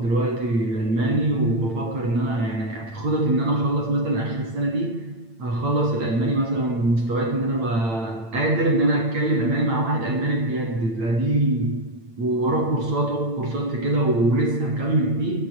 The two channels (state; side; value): late; left; 8.8 ms